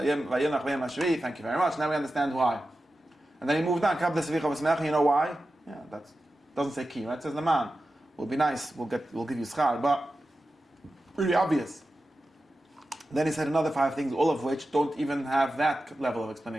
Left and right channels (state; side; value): normal; both; correlation 0.93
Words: very much. Now we understand why. And then he moved on. You know why? Yeah, that doesn't say ki, right? It says the man. Will be nice. We'll give you schar, but really obvious. Then he said another 5 things, all of which don't even have that level of